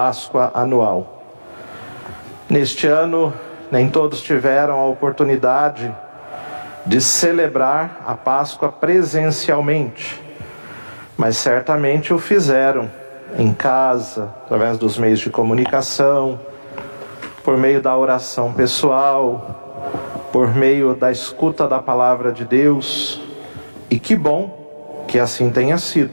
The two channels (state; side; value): inverted; both; correlation -1.00